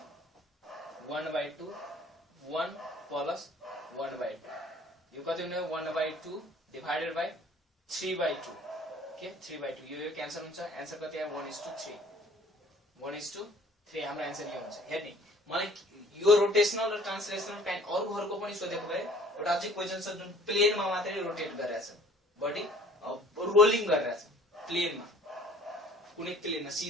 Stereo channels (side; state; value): both; normal; correlation 0.53